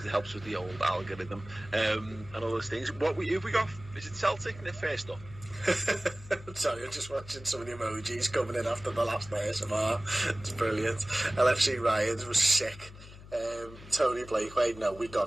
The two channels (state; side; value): noise; left; hum, 17 dB below the sound